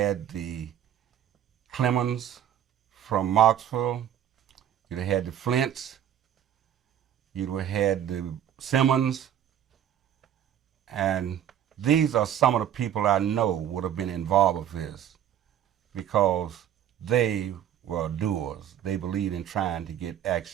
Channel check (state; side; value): quieter; left; 10.3 dB